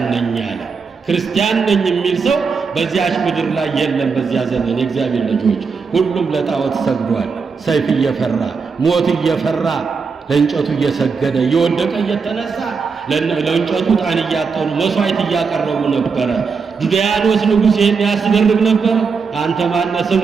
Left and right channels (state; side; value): quieter; left; 5.2 dB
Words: ነኝ አለ። ክርስቲያን ነኝ የሚል ሰው በዚያች ምድር ላይ የለም። በዚያ ዘመን የእግዚአብሔር ልጆች ሁሉም ለጣዖት ሰግዷል። ሰይፍ እየፈራ ሞት እየፈራ ለእንጨቱ እየሰገደ እየወደቀ እየተነሳ ለእንጨቱ ዕጣን እያጠኑ መሥዋዕት እያቀረቡ ነበረ። ዱድያኖስ ንጉሥ ይህን ያስደርግ ነበር። አንተ ማነህ?